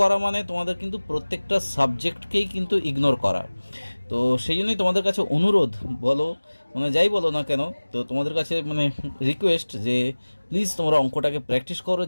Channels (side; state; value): both; inverted; correlation -1.00